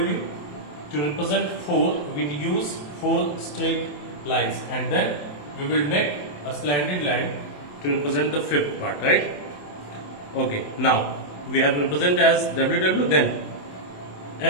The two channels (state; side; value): late; right; 27 ms